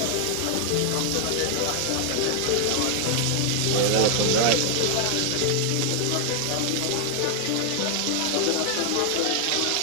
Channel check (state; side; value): different; both; correlation 0.00